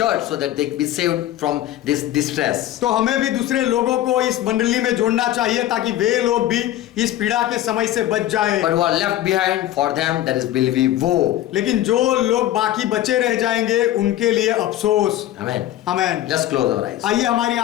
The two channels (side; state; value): right; quieter; 13.4 dB